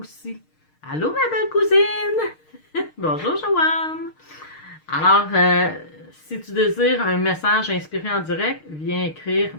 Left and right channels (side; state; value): right; late; 6.5 ms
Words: Allô, ma belle cousine! Bonjour, Joanne! Alors, si tu désires un message inspiré en direct, viens écrire «